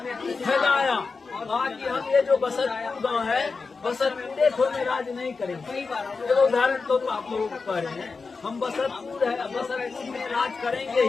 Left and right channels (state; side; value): quieter; right; 4.5 dB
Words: फैलाया। बाकी हम ये जो बसतपुर गाँव है, बसतपुर को में राज नहीं करेंगे। तो उदाहरण तो आप लोगों को कह रहे हैं, हम बसतपुर में राज करेंगे